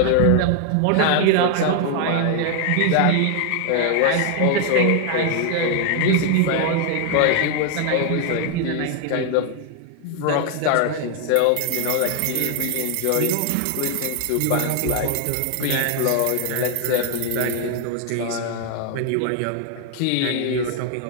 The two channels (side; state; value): both; different; correlation 0.00